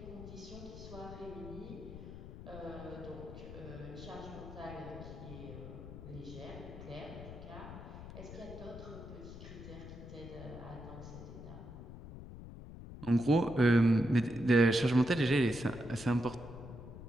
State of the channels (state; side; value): noise; left; rumble, 12 dB below the sound